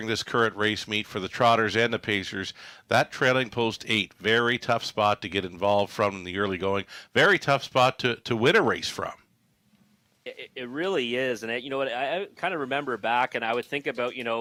this current race meet for the Trotters and the Pacers. That trailing post 8, very tough spot to get involved from in the early going. Very tough spot to win a race from. It really is. And you know what? I kind of remember back and I would think about,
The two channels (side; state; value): both; identical; correlation 1.00